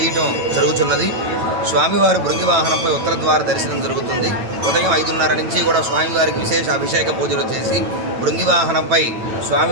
జరుగుతున్నది. స్వామివారి భృంగి వాహనంపై ఉత్తర ద్వార దర్శనం జరుగుతుంది. ఉదయం 5:30 నుంచి కూడా స్వామివారికి విశేష అభిషేక పూజలు చేసి భృంగి వాహనంపై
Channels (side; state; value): left; late; 9.1 ms